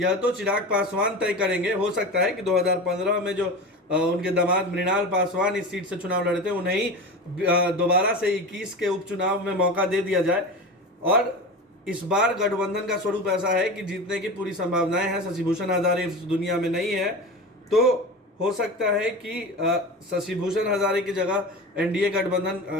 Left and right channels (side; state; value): both; normal; correlation 0.28